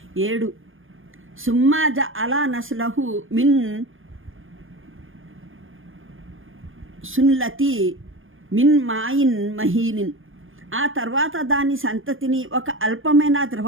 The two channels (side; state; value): left; late; 0.59 ms